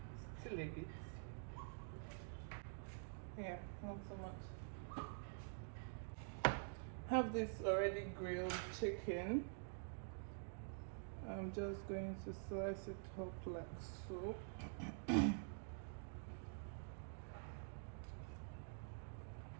still a bit. Yeah, not so much. Have this already grilled chicken. I'm just going to slice it up like so.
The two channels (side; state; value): left; silent; digital silence